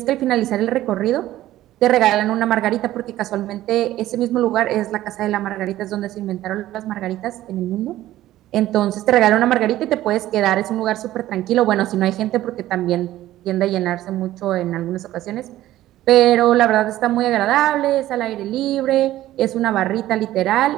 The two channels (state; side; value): quieter; left; 14.5 dB